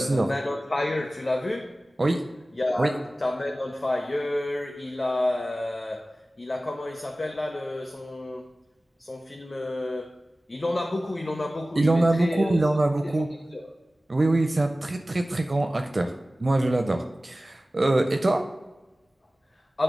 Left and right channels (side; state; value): both; normal; correlation 0.97